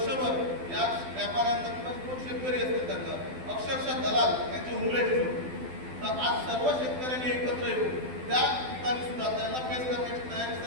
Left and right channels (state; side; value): late; left; 12 ms